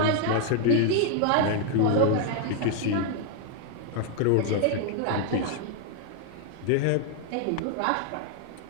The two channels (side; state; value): both; different; correlation 0.01